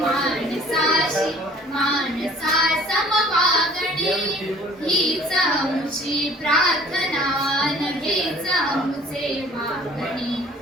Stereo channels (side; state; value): both; normal; correlation 0.52